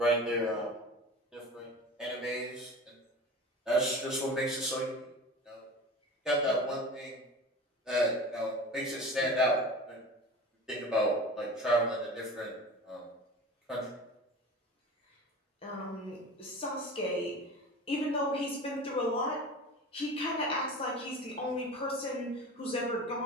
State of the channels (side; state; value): both; normal; correlation 0.35